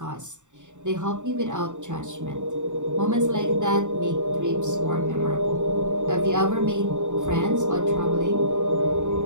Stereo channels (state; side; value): late; left; 0.85 ms